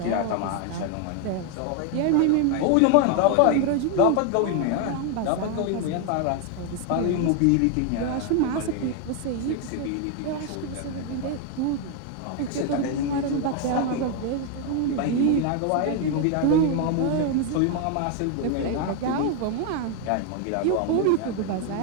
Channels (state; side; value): different; both; correlation 0.01